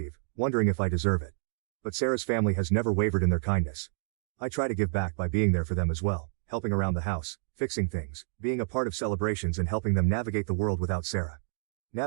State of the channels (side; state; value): left; silent; 58 dB below the other